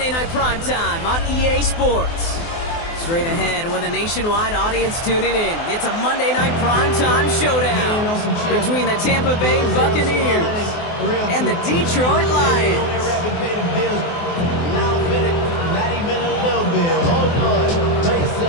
Night Primetime on EA Sports. Straight ahead with a nationwide audience tuning in. It's a Monday Night Primetime showdown between the Tampa Bay Buccaneers and the Detroit Lions.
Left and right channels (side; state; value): right; late; 24 ms